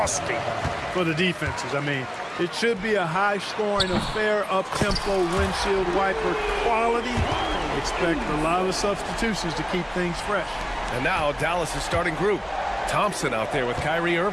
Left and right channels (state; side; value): identical; both; correlation 1.00